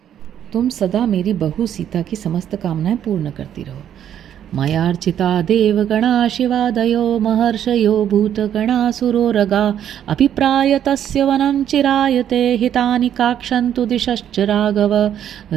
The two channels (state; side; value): quieter; left; 10.0 dB